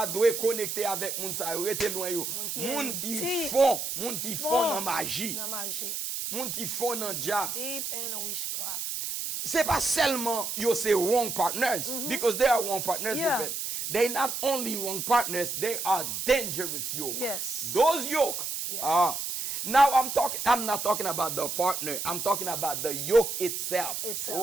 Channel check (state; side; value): noise; right; hiss, 4 dB below the sound